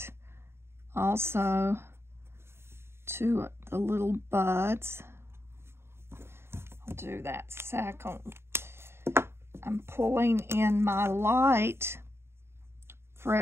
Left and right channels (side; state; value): left; late; 0.12 ms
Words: also to the little buds. I'll do that second. I'm pulling in my light